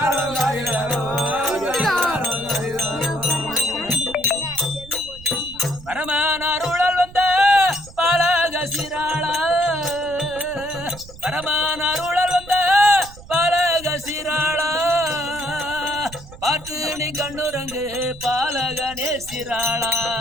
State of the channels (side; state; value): right; noise; rumble, 18 dB below the sound